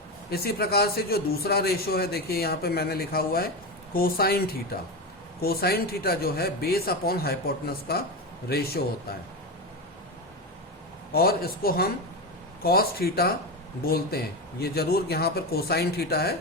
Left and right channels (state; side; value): normal; both; correlation 0.17